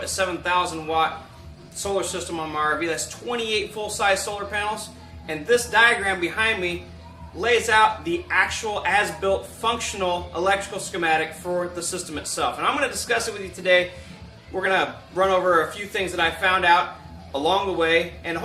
a 7,000 watt solar system on my RV. That's 28 full-size solar panels, and this diagram behind me lays out the actual as-built functional electrical schematic for the system itself. And I'm going to discuss it with you today. We're going to run over a few things that I found out along the way, and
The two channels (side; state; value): both; identical; correlation 1.00